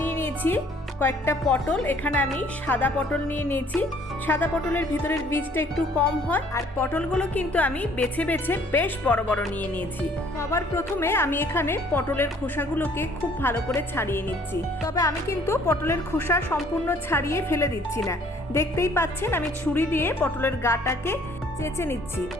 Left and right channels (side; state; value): both; normal; correlation 0.59